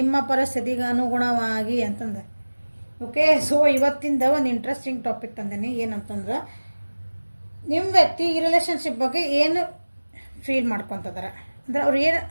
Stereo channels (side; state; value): both; inverted; correlation -1.00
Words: ಪರಿಸ್ಥಿತಿಗೆ ಅನುಗುಣವಾಗಿ ಅಂತಂದೆ. ಓಕೆ, ಸೊ ಇವತ್ತಿಂದ ಒಂದು ಇಂಟ್ರೆಸ್ಟಿಂಗ್ ಟಾಪಿಕ್ ತಂದೇನಿ. ಏನಂತಂದ್ರೆ ನಿಮ್ಮ ವ್ಯಕ್ತಿ ಈ ರಿಲೇಷನ್ಶಿಪ್ ಬಗ್ಗೆ ಏನು ಫೀಲ್ ಮಾಡ್ಕೊತಿದ್ದಾರೆ, ಅಂದ್ರೆ ಅವ್ರು ಏನು